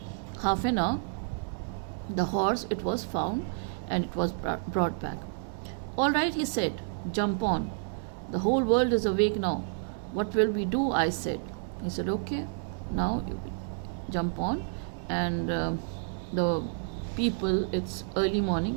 half an hour, the horse, it was found and it was brought back. All right, he said, jump on. The whole world is awake now. What will we do? I said. He said, okay, now you jump on. And the people, it's early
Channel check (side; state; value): left; silent; 58 dB below the other